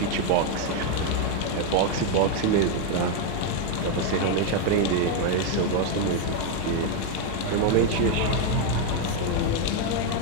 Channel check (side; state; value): both; different; correlation 0.01